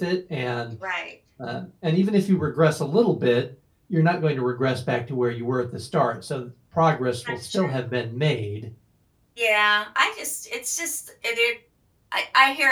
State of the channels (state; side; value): identical; both; correlation 1.00